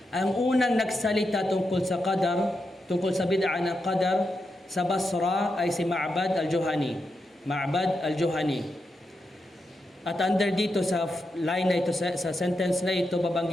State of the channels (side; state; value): both; normal; correlation 0.86